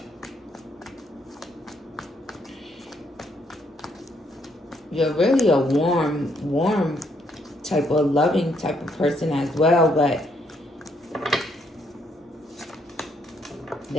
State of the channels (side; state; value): both; normal; correlation 0.72